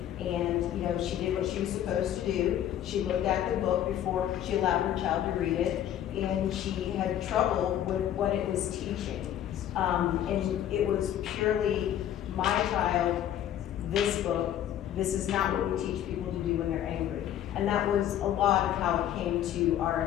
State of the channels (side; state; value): right; quieter; 11.1 dB